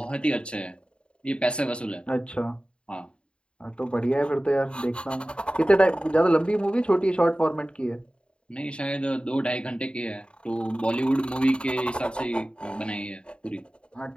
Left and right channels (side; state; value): right; late; 0.054 ms